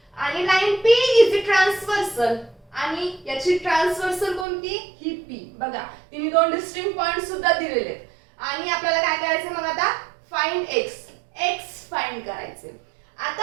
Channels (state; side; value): drops out; left; at 4.5 s